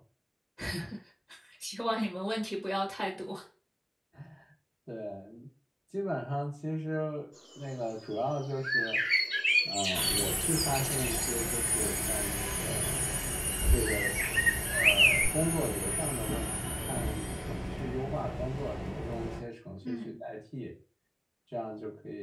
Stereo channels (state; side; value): identical; both; correlation 1.00